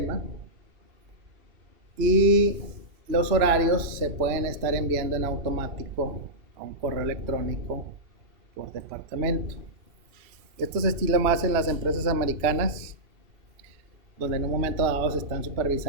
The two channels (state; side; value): late; left; 2.9 ms